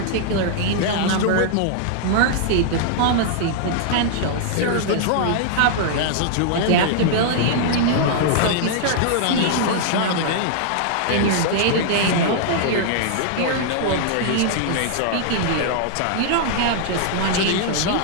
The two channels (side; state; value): both; different; correlation -0.01